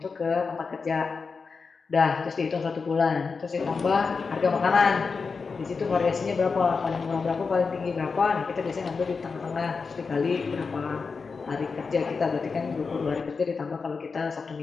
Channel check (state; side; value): quieter; right; 4.9 dB